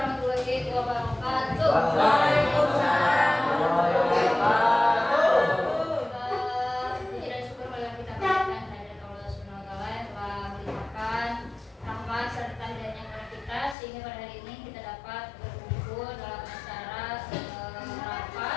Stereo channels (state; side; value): drops out; right; at 13.8 s